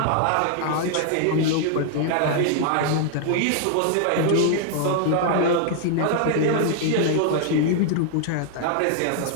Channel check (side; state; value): both; different; correlation -0.01